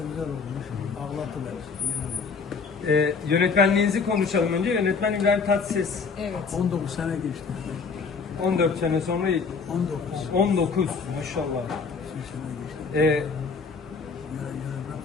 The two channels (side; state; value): right; quieter; 5.1 dB